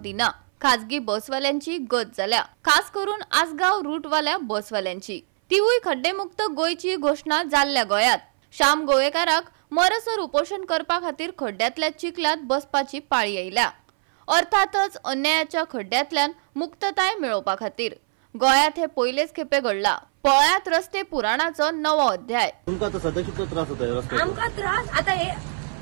खाजगी बसवाल्यांची गत जाल्या, खास करून आसगाव रूटवाल्या बसवाल्यांची. तिवूय खड्डेमुक्त गोंयची घोषणा जाल्ल्या गोंयांत. श्याम गोवेकाराक मरसर उपोषण करपा खातीर खड्ड्यांतल्या चिखलात बसपाची पाळी आयल्या. अर्थातच अन्यायाच्या खड्ड्यांतल्यान मुक्तताय मेळोवपा खातीर. गोंयांत हे पयलेच खेपे घडला. पळयात रस्ते पुराणाचो नवो अध्याय. आमकां त्रास आता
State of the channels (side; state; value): left; silent; 60 dB below the other